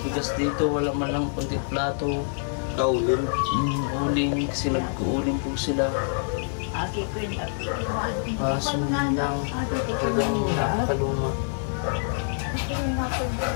dito. Wala man lang kunti plato. Kaulin. Uling. Kasi nag-uuling po sila. Aki ko yun. Kaso lang. Talagang nakakaluma.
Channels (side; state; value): right; silent; digital silence